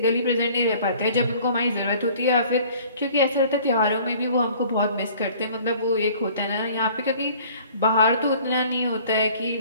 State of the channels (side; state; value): both; inverted; correlation -0.52